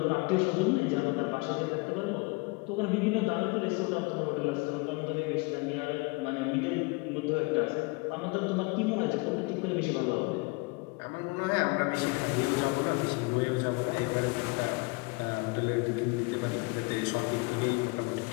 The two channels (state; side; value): quieter; right; 27.9 dB